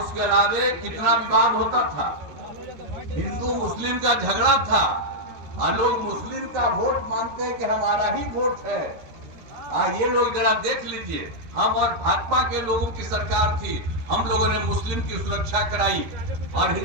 अलावे कितना विवाद होता था, हिंदू मुस्लिम का झगड़ा था और लोग मुस्लिम का वोट मानते हैं कि हमारा ही वोट है। ये लोग जरा देख लीजिए, हम और भाजपा के लोगों की सरकार थी, हम लोगों ने मुस्लिम की सुरक्षा कराई और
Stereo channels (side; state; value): left; late; 13 ms